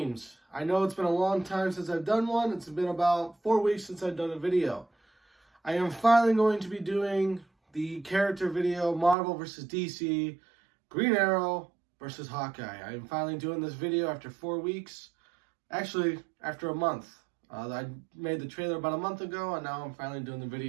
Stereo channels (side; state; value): left; drops out; at 9.2 s